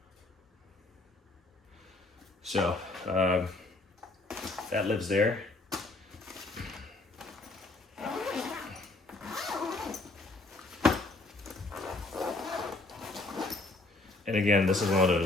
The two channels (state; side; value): quieter; right; 3.1 dB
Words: So that lives there. And again, this is one of